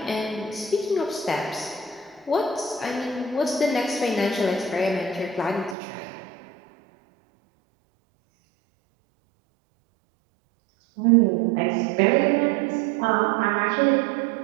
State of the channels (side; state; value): left; drops out; at 5.8 s